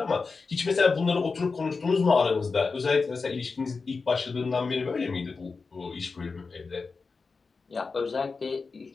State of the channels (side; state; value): right; quieter; 4.5 dB